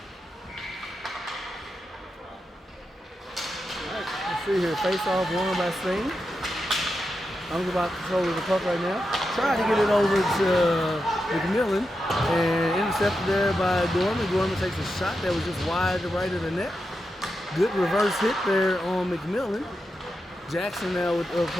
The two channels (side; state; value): both; normal; correlation 0.88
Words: Let's see here. Face-off won by Sting. I'm about control of the puck right now. Trying to get it over to McMillan and intercepted there by Gorman. Gorman takes a shot that was just wide to right of the net. Good reverse hit there on McMillan. Jackson now with the